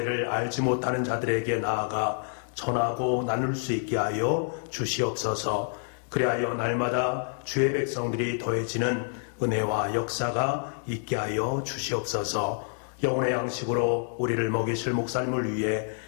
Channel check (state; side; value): silent; right; digital silence